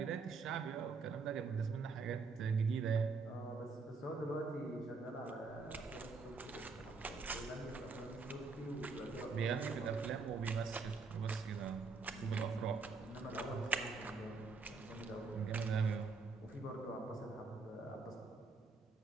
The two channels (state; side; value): quieter; left; 4.4 dB